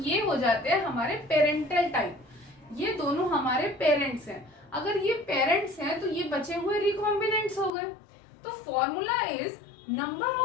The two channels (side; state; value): right; drops out; at 7.7 s